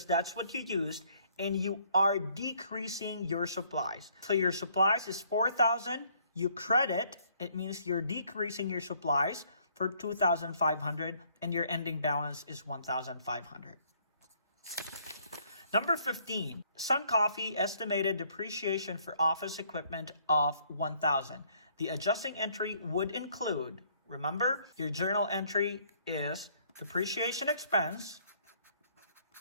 that's what you used, and you are decreasing your supplies. So your supplies is 4,000, you credit, it means you're decreasing your supplies for 2,500, and your ending balance is 1,500. Number 15, Sun Coffee estimated depreciation for office equipment of 1,000. The adjusting entry would include, remember, your journal entry is depreciation expense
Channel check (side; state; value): both; inverted; correlation -0.64